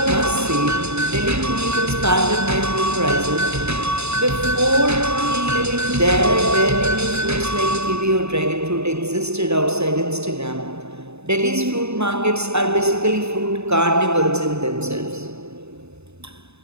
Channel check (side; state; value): left; late; 0.80 ms